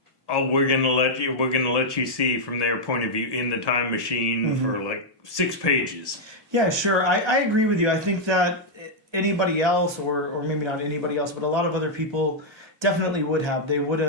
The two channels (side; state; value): both; normal; correlation -0.03